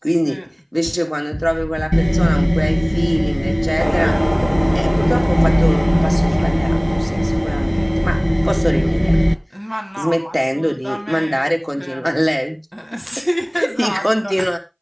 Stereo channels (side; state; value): both; identical; correlation 1.00